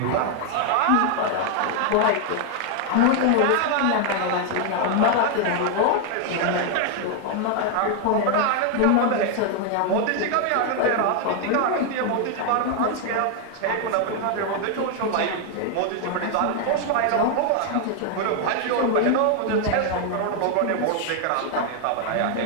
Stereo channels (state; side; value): different; both; correlation 0.00